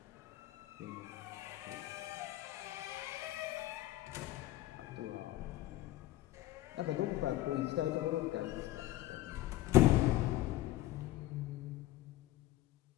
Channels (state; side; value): quieter; right; 15.8 dB